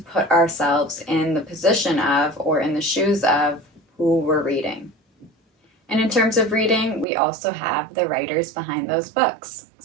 ourselves in the position of or in the shoes of who we're reading. And in terms of reading, we also have the writers behind those books.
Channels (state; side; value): drops out; left; at 7.1 s